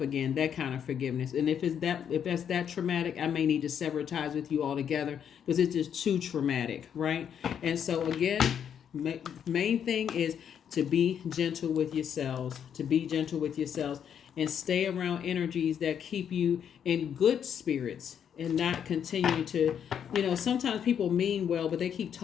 again, that kind of forgiveness. And if that's that traumatic, I may need to sever ties with you altogether because it's just too traumatic, right? And so again, main thing is to be gentle with yourselves, and stay around energies that keep you in good spirits. And not continue to, sometimes people mean well, but they keep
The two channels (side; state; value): right; quieter; 8.4 dB